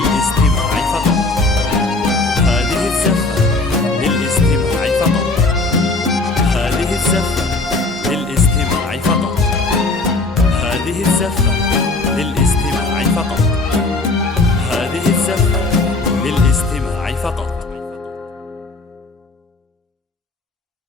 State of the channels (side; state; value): right; quieter; 3.3 dB